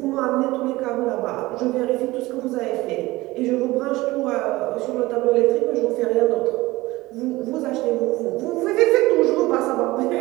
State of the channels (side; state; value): left; quieter; 19.5 dB